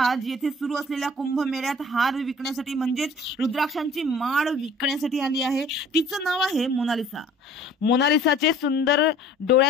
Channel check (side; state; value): both; normal; correlation 0.50